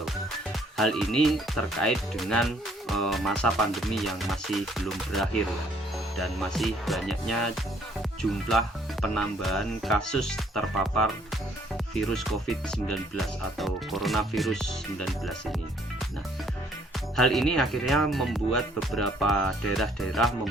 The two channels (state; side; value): normal; both; correlation 0.63